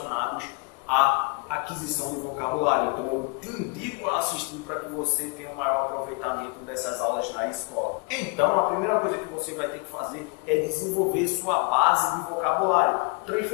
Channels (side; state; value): right; quieter; 31.0 dB